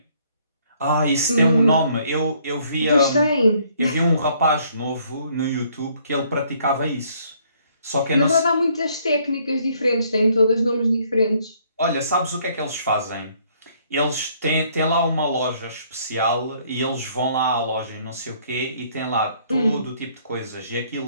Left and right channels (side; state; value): both; inverted; correlation -0.65